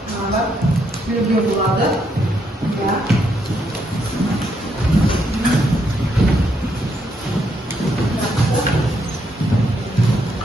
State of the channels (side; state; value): both; normal; correlation 0.76